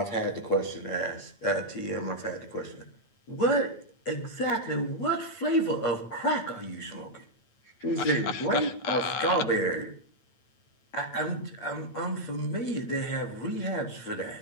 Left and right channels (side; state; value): right; late; 8.9 ms